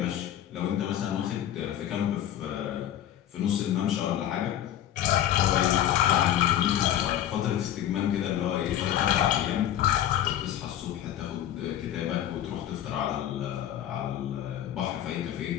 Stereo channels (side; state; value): right; quieter; 11.4 dB